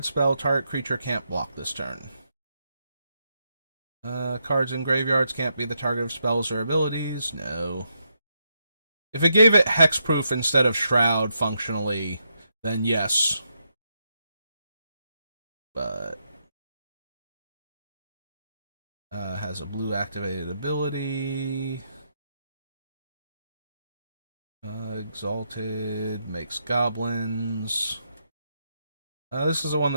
spell, target creature can't block this turn. Cards in graveyards can't be the target of spells or abilities. No. If it gave it hexproof instead of shroud functionally, then yes. But has a blue activated ability. Exalted, makes goblins. This is the one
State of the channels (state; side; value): inverted; both; correlation -0.80